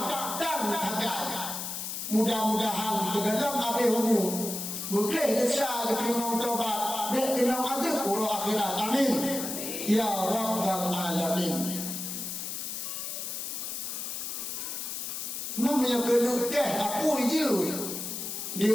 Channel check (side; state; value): left; noise; hiss, 5 dB below the sound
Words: dan tagai. Mudah-mudahan tergelam habis umur boleh besar diterima taubat dan kena ada urut akhirat. Amin ya Rabbal Alamin. Namanya kelukeh apa je